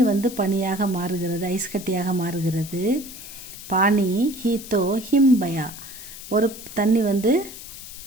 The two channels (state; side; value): noise; left; hiss, 13 dB below the sound